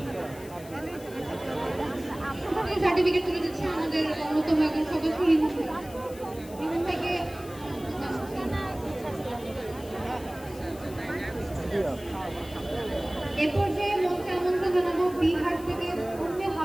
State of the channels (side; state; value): left; noise; hiss, 19 dB below the sound